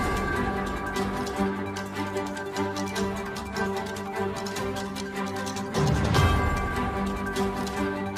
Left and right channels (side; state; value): both; identical; correlation 1.00